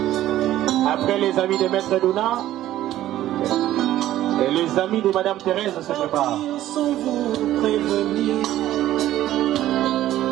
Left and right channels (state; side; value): quieter; left; 13.7 dB